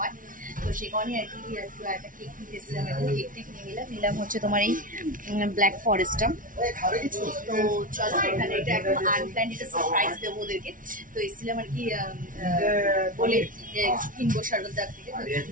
তো সেই কারণে আর কি একটু একটা কেক নিতে এসেছিলাম, এখন কেক টেক নিয়ে নিলাম হচ্ছে তোমার এই ব্ল্যাক ফরেস্টটা। তো চলো, এখানে এটা একদম আনপ্ল্যান্ড, এটা সারপ্রাইজ দেবো ওদেরকে। তো এসেছিলাম আর কি বলে কিনবো সর্বদার থেকে, তো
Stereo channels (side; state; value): left; late; 0.39 ms